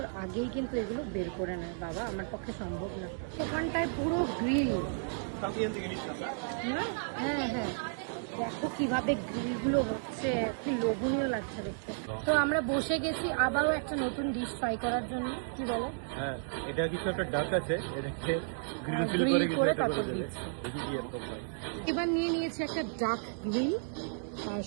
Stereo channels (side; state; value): left; silent; digital silence